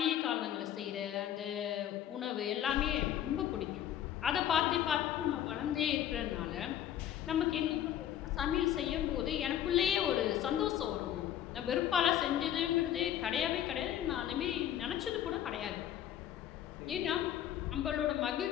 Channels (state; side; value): quieter; right; 11.1 dB